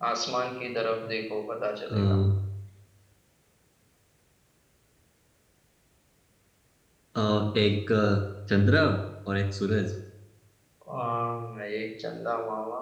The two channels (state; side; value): identical; both; correlation 1.00